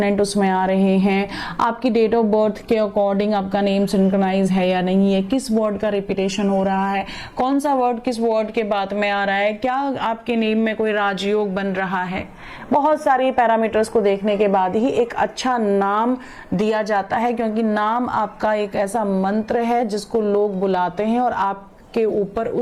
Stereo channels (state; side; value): identical; both; correlation 1.00